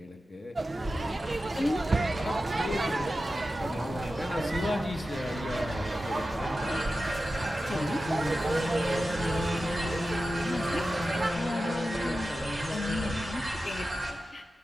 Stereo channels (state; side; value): normal; both; correlation 0.93